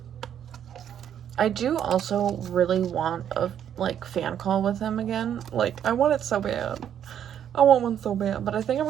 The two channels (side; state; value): left; quieter; 9.5 dB